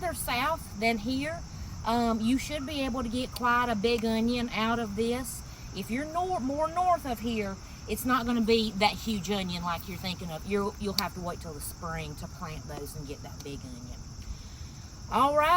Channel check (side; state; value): both; identical; correlation 1.00